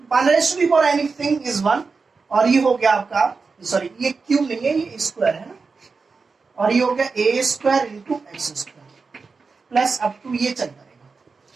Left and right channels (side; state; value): left; quieter; 4.6 dB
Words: 1 raised to the power anything is 1, और ये हो गया आपका, सॉरी ये क्यूब नहीं है, ये स्क्वायर है ना, और ये हो गया a square into X square plus up to ये चलता रहेगा।